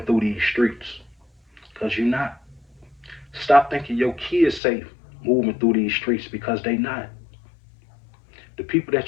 through these streets, because you're not. Stop thinking your kids safe moving through these streets, because they not. people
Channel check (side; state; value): right; drops out; at 4.6 s